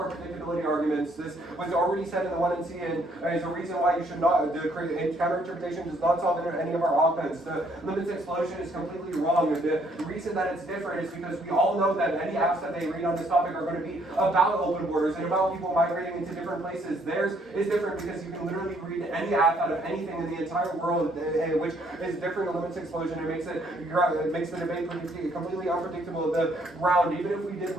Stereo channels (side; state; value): both; normal; correlation 0.67